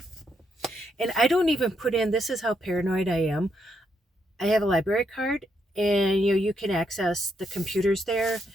And I don't even put in, this is how paranoid I am. I have a library card, and you can access the computers there,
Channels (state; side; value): normal; both; correlation 0.78